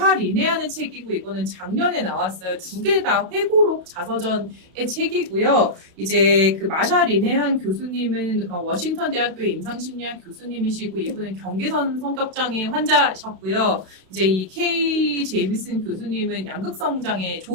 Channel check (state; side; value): late; left; 32 ms